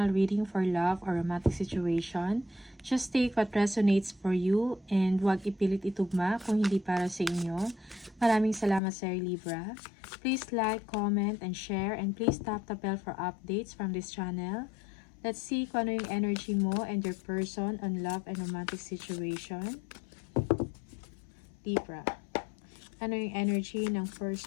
reading for love or romantic situation. Just take what resonates for you and huwag ipilit itugma kung hindi para sa inyo. Maraming salamat sa Libra. Please like, comment, and share, and please tap the bell for updates from this channel. Let's see kung ano yung energy mo and your person on love and romantic situation. Libra. Ano yung energy ng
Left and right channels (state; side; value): drops out; right; at 8.8 s